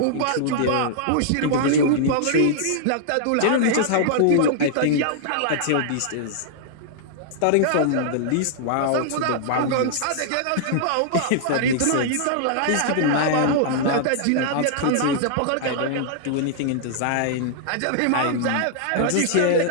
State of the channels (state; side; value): different; both; correlation -0.01